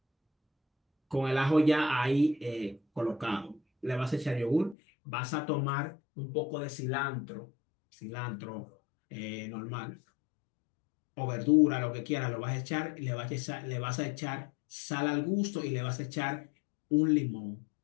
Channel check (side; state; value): right; drops out; at 4.8 s